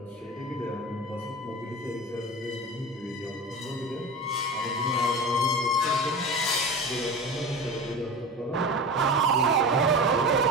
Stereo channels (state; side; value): normal; both; correlation 0.30